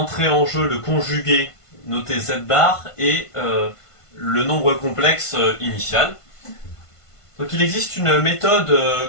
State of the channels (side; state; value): right; late; 1.5 ms